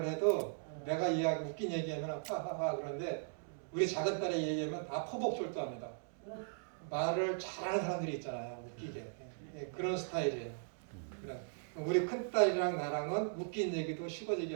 해도 내가 이야기 웃긴 얘기하면 하하하 그런데 우리 작은 딸이 얘기하면 다 포복절도합니다. 말을 잘하는 사람들이 있잖아요. 웃기게. 그런 스타일이에요. 그래. 우리 큰딸이랑 나랑은 웃긴 얘기도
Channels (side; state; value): left; silent; digital silence